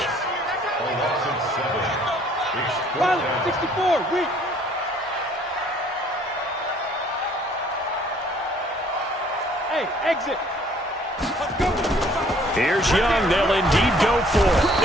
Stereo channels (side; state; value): both; normal; correlation 0.59